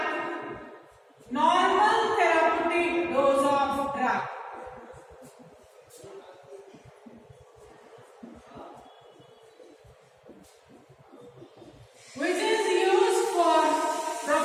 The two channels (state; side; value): identical; both; correlation 1.00